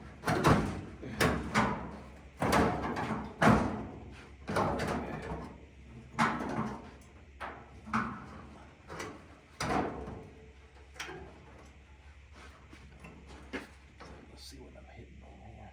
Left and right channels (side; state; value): both; identical; correlation 1.00